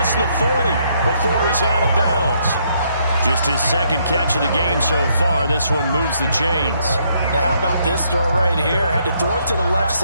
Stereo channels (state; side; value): inverted; both; correlation -0.72